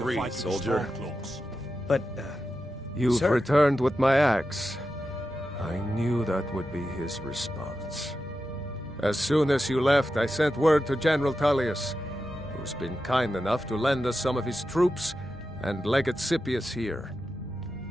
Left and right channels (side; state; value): both; normal; correlation 0.90